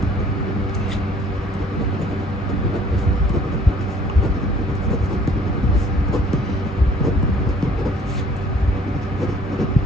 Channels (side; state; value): both; normal; correlation 0.56